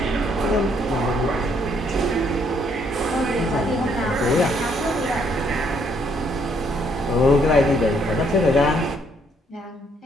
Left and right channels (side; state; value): both; normal; correlation 0.69